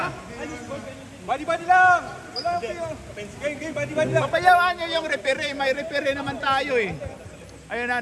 Body lang! Wala kayo. Game, body lang. Papayawaan nyo yung referee. May referee naman tayo eh. Ayun na,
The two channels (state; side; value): identical; both; correlation 1.00